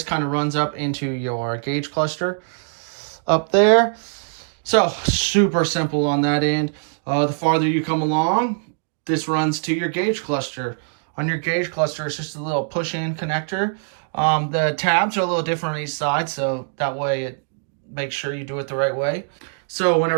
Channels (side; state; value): left; silent; digital silence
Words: kind of runs up into your gauge cluster up there. So super simple on that end. The farther you come along, this runs to your gauge cluster. On your gauge cluster, it's just a little push-in connector. The tabs are a little different on each side, so that way it makes sure you do it the right way. So